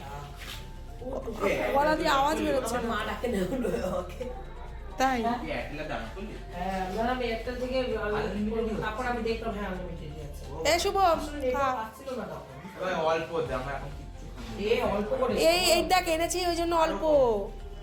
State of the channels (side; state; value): both; identical; correlation 1.00